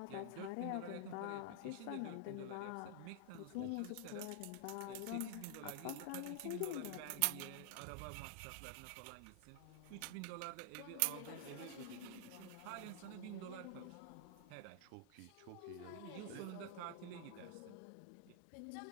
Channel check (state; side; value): different; both; correlation 0.00